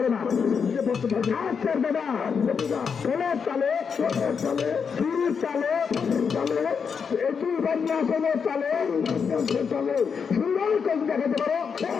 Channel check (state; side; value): quieter; right; 6.2 dB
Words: না। আচ্ছা দাদা ষোলোর চালে শুরুর চালে এটি বন্যাসনের চালে সুন্দর কবি দেখাতে পারো।